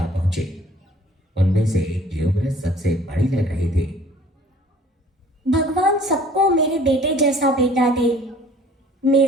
पहुंची। उनमें से एक की उम्र सबसे बड़ी लग रही थी। भगवान सबको मेरे बेटे जैसा बेटा दे।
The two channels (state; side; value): normal; both; correlation 0.52